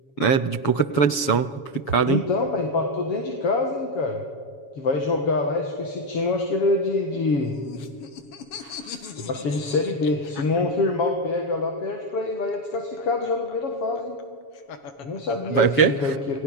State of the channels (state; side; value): late; right; 7.2 ms